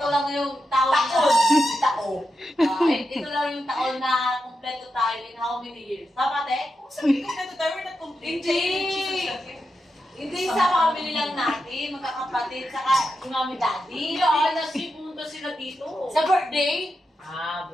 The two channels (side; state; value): both; normal; correlation 0.88